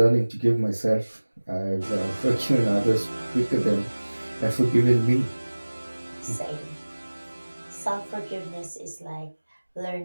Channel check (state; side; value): inverted; both; correlation -1.00